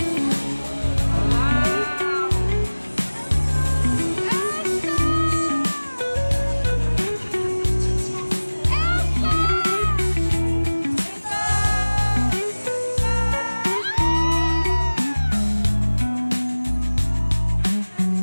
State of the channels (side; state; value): both; inverted; correlation -1.00